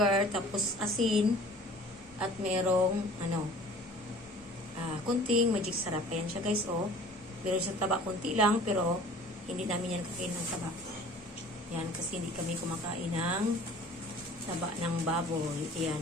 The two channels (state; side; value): normal; both; correlation 0.48